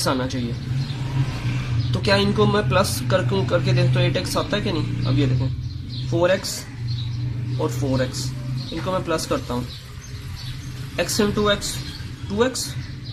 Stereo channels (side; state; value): both; identical; correlation 1.00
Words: आना चाहिए। तो क्या इनको मैं प्लस करके देख तो 8x आता है कि नहीं? अब ये देखें 4x और 4x, इनको मैं प्लस करता हूँ, x into x 2x,